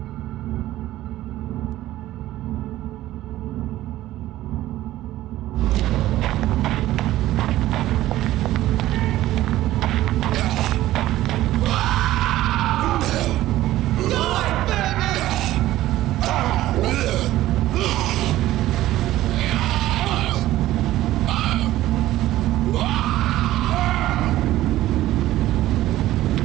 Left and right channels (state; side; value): quieter; left; 15.1 dB